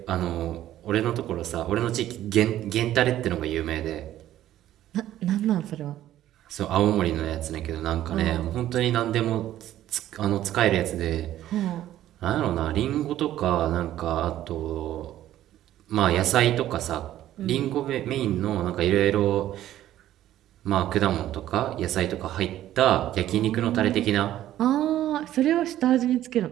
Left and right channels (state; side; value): quieter; left; 13.0 dB